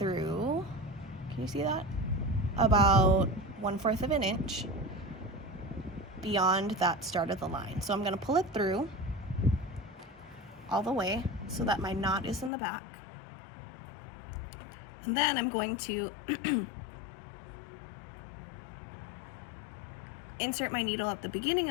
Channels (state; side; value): drops out; right; at 12.5 s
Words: can you see that? About 1/4 of an inch beyond that start of the line. So I'm gonna pull it through all the way so that my knot is in the back. And then I'm going to insert my needle at the beginning